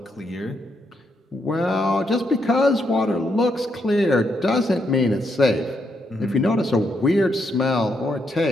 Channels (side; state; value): both; normal; correlation 0.78